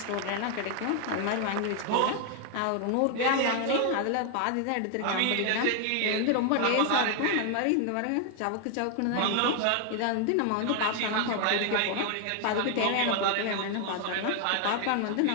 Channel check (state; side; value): different; both; correlation 0.00